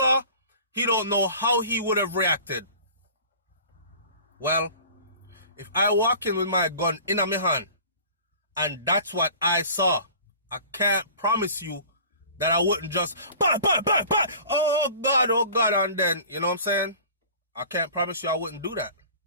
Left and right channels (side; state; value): both; inverted; correlation -0.44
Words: he don't know how he would have reacted. Well, if I walk in with my gun in my hand, and that's what I saw, I can't promise you that I wouldn't just, bah, oh God, and then, you know what I'm saying? I can't promise you I wouldn't do that.